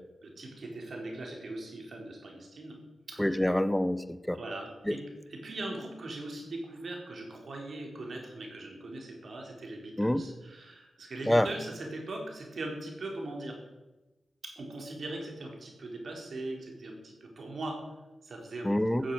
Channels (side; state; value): both; normal; correlation 0.97